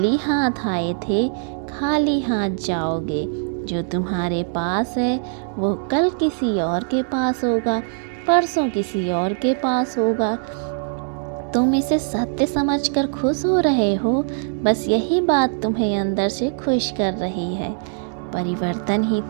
हाथ आए थे, खाली हाथ जाओगे। जो तुम्हारे पास है वो कल किसी और के पास होगा, परसों किसी और के पास होगा। तुम इसे सत्य समझकर खुश हो रहे हो, बस यही बात तुम्हें अंदर से खुश कर रही है। परिवर्तन ही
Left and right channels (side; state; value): left; silent; 64 dB below the other